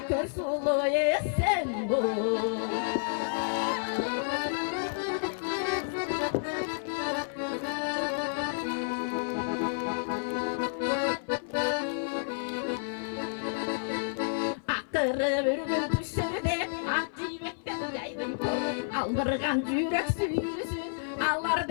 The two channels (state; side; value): silent; right; 55 dB below the other